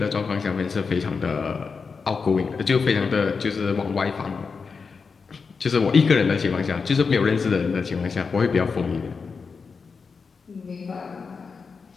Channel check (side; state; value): right; quieter; 5.1 dB